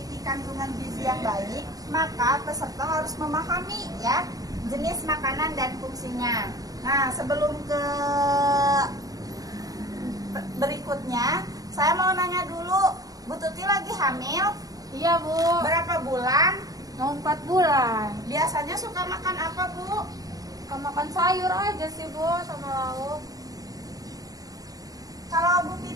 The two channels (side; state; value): left; late; 0.18 ms